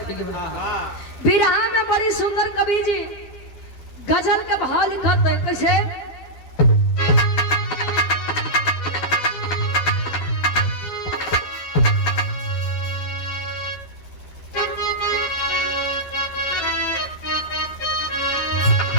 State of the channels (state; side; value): late; right; 12 ms